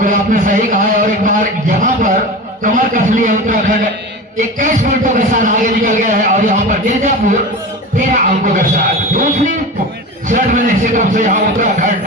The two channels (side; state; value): both; normal; correlation 0.30